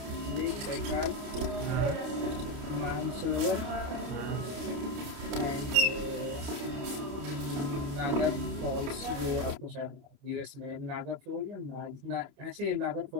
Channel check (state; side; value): late; left; 29 ms